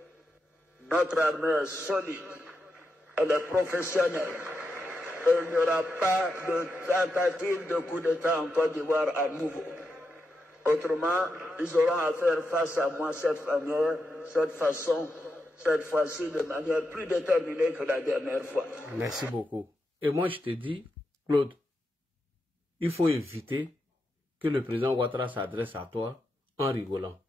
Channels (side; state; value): both; normal; correlation 0.86